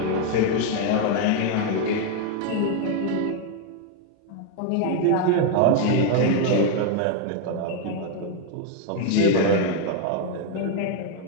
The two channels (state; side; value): different; both; correlation 0.01